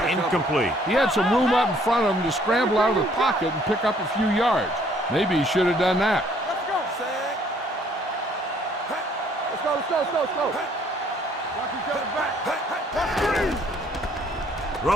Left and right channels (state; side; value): normal; both; correlation 0.62